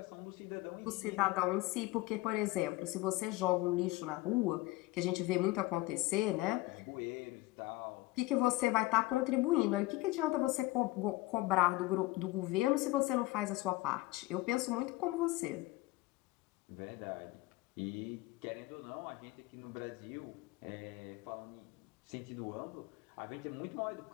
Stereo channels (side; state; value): right; quieter; 19.9 dB